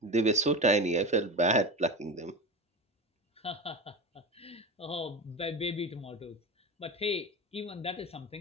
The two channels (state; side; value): normal; both; correlation 0.25